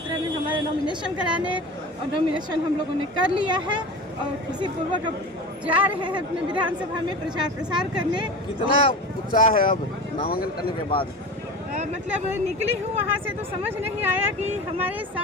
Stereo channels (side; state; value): both; normal; correlation 0.31